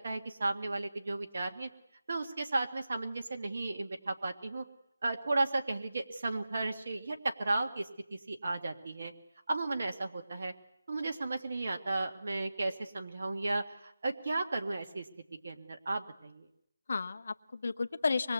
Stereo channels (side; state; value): both; inverted; correlation -0.93